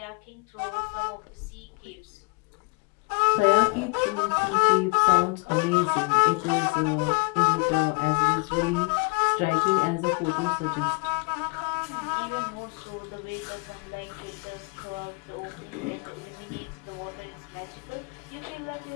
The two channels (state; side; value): quieter; right; 31.6 dB